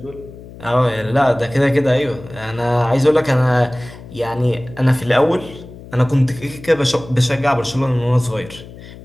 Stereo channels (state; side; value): noise; left; hum, 17 dB below the sound